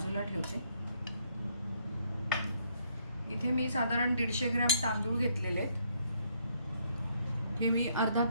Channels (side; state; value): both; inverted; correlation -0.70